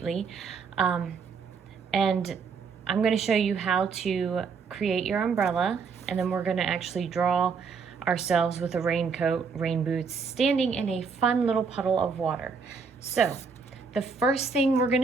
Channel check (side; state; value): left; quieter; 5.4 dB